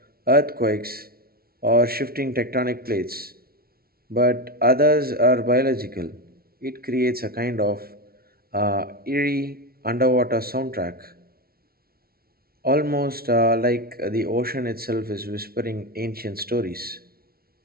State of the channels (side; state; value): left; late; 0.44 ms